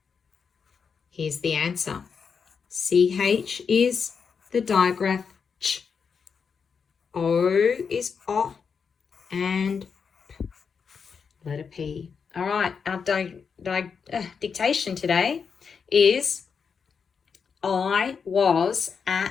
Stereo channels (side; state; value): right; quieter; 6.1 dB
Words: Here's the answer. CH is the digraph ch. O is o and p. Letter P. All right, our dictation today is I was